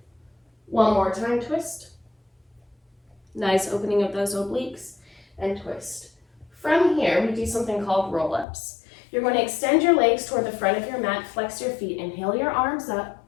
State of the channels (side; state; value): right; drops out; at 8.5 s